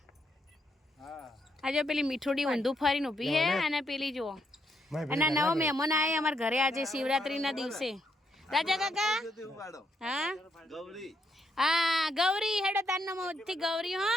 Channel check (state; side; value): normal; both; correlation 0.77